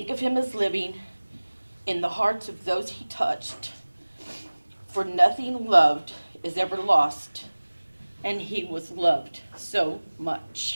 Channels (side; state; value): both; inverted; correlation -1.00